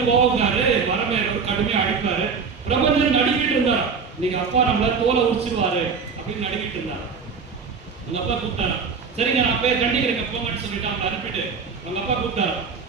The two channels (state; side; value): quieter; left; 5.5 dB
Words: கோவக்காரு, வரமையோட கடுமையா அடிப்பாரு. பிரபஞ்சன் நடிக்கிட்டு இருந்தார். நீங்க அப்பா நம்மள தோலை உரிச்சிருவாரு அப்படின்னு நடிக்கிட்டு இருந்தார். அவங்க அப்பா கூப்பிட்டாரு. சரிங்க நான் போய் கண்டிக்கிறேங்க போங்கன்னு சொல்லிட்டு அவங்க அனுப்பிட்டு அவங்க அப்பா கூப்பிட்டாரு.